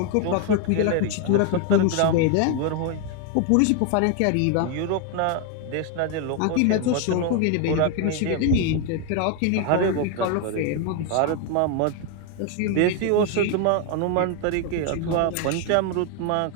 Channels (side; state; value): both; different; correlation 0.01